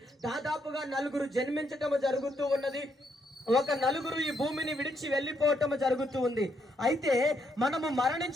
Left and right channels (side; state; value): both; normal; correlation 0.76